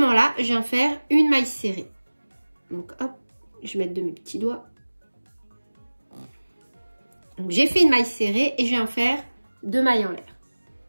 là, je viens faire une maille serrée. Donc, hop, je vais mettre de mes petits doigts. Donc, j'ai fait une maille serrée et je viens faire 2 mailles en l'air.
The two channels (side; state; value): both; inverted; correlation -1.00